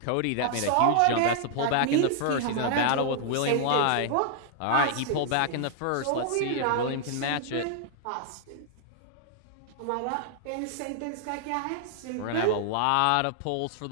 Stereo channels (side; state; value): both; different; correlation 0.00